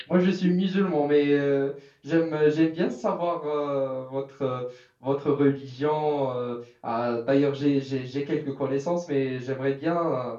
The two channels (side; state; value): both; identical; correlation 1.00